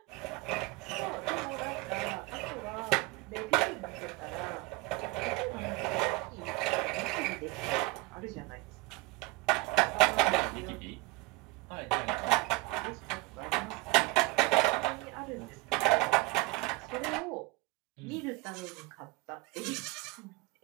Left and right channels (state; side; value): quieter; left; 23.1 dB